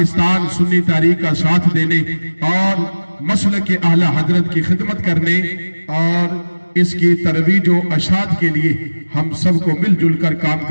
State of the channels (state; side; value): inverted; both; correlation -1.00